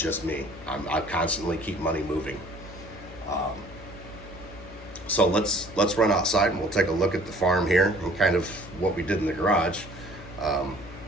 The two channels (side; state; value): left; noise; hum, 16 dB below the sound